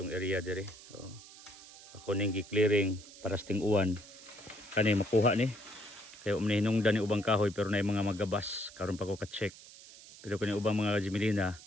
area dire. So, ako ning gi-clearing para sa ting-uwan. Kani makuha ni. Kaya hinungdan ni ubang kahoy pero na mga magabas. Karon pa ko ka-check. Pero kani ubang mga Jimelina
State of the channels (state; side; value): noise; right; hiss, 19 dB below the sound